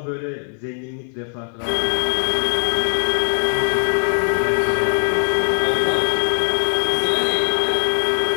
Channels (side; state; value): right; silent; 56 dB below the other